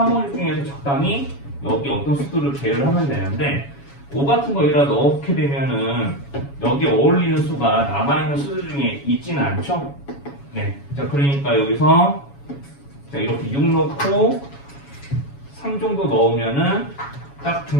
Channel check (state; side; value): late; right; 7.2 ms